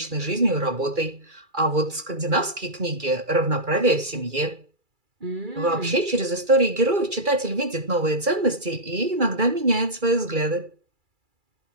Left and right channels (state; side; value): late; left; 2.3 ms